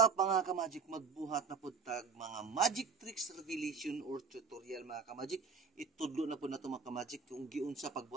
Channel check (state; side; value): quieter; left; 5.2 dB